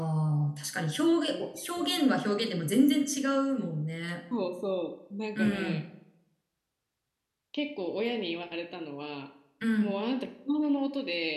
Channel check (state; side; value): identical; both; correlation 1.00